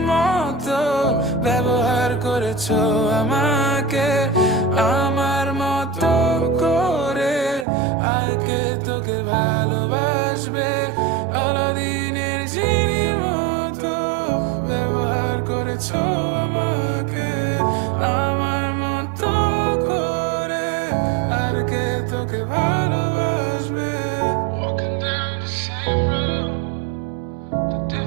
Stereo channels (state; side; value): drops out; left; at 7.7 s